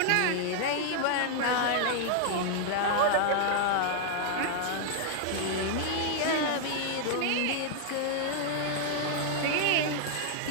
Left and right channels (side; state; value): both; different; correlation 0.00